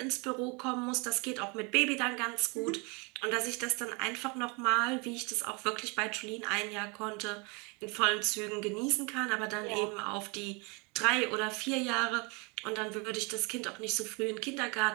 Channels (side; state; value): left; quieter; 30.4 dB